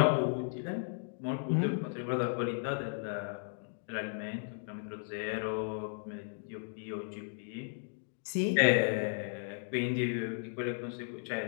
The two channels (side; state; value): right; silent; digital silence